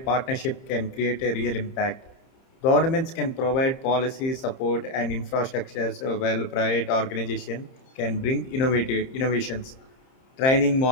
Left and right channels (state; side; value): late; right; 30 ms